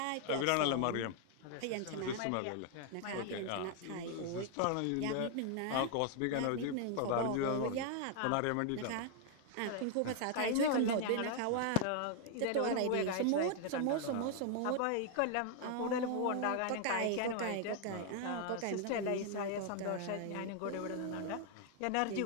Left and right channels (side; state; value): both; different; correlation 0.00